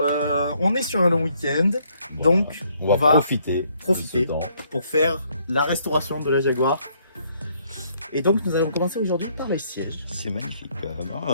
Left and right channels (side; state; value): both; inverted; correlation -0.68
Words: on est sur un long week-end, donc on va profiter de ce temps. pour faire la restauration de la Jaguar. Et donc, nous allons commencer aujourd'hui par les sièges. C'est magnifique quand